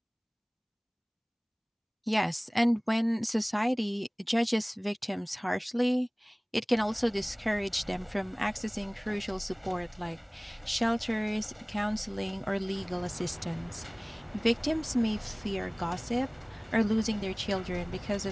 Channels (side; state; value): both; identical; correlation 1.00